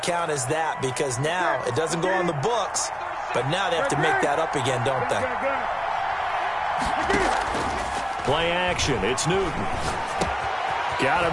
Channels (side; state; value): both; identical; correlation 1.00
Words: as that because now it doesn't go on the books, but now they have to make that up again, don't they? Play action. It's Newton. Got